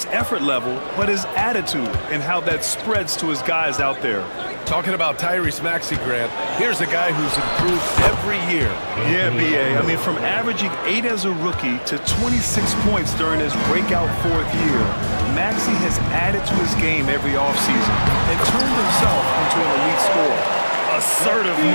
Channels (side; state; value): both; inverted; correlation -1.00